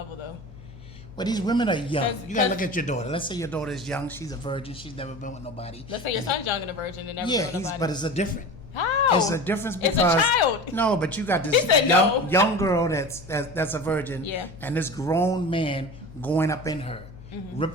though. But these women are young. 'Cause- You gotta look at your daughter. Let's say your daughter is young. She's a virgin. She's never been with nobody. Let's say your son's young and a virgin and never Yeah, with nobody. but it's a different. How? It's a difference because it's a child. No, but you got this He said young, no. young girl that's a virgin, Yeah. and this grown man going up in her, Mm-hmm.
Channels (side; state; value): left; noise; hum, 18 dB below the sound